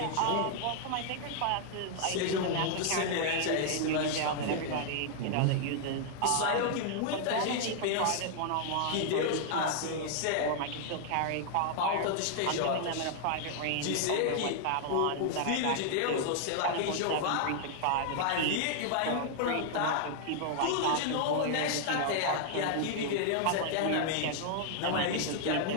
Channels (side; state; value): both; different; correlation 0.00